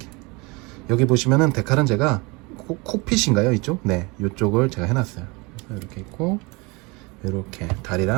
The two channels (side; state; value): left; quieter; 26.8 dB